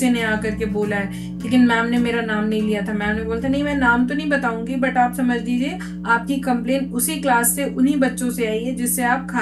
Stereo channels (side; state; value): both; identical; correlation 1.00